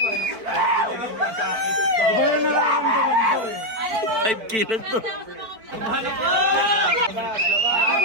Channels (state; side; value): late; left; 4.5 ms